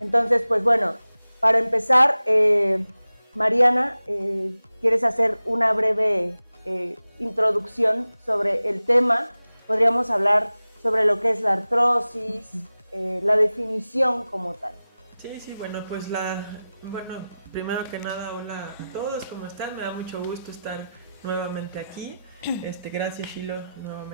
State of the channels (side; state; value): both; inverted; correlation -0.95